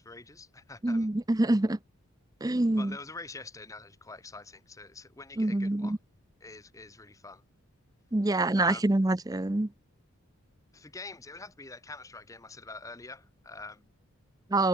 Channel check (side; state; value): both; normal; correlation 0.75